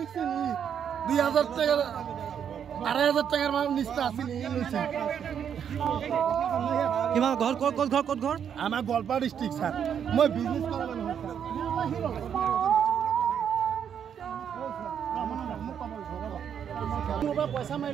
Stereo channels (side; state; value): left; quieter; 8.3 dB